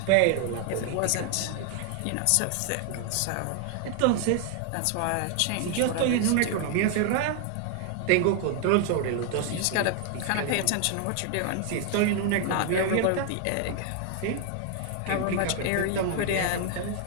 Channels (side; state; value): both; different; correlation 0.00